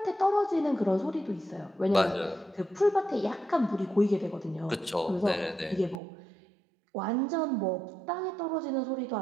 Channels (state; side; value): drops out; left; at 6.0 s